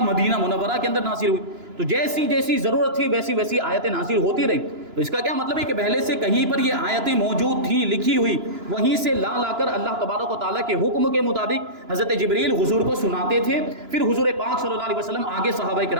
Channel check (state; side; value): late; left; 2.9 ms